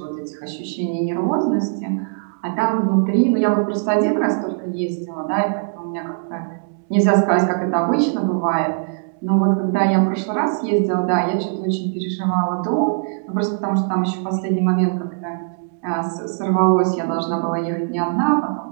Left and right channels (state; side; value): silent; left; digital silence